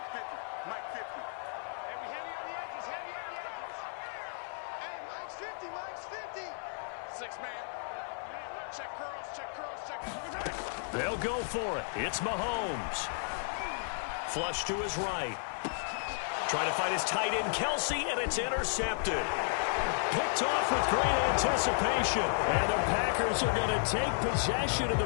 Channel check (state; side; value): silent; right; 55 dB below the other